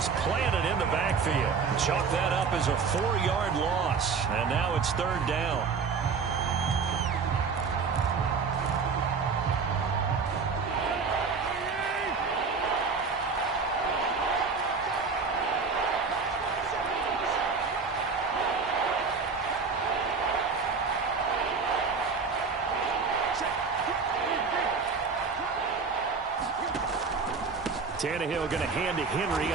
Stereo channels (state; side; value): quieter; left; 5.1 dB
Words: planted in the backfield. Chalk that up as a 4-yard loss. And now it's third down. Tannehill going to hand to Henry